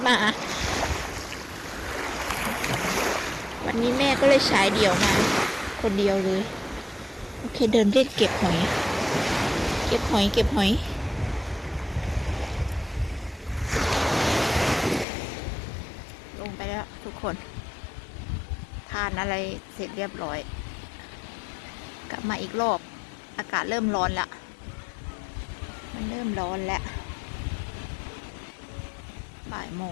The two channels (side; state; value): right; drops out; at 15.1 s